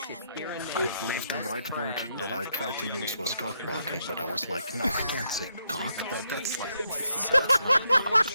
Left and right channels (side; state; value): both; inverted; correlation -0.78